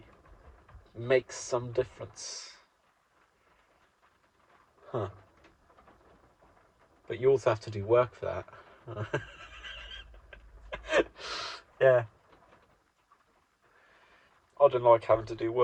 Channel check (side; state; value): both; identical; correlation 1.00